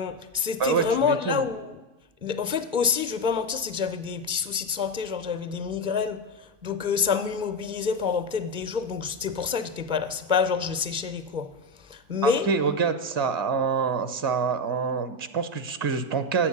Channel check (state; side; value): late; left; 2.2 ms